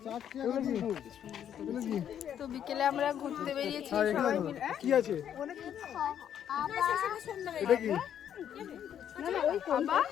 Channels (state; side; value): quieter; right; 9.5 dB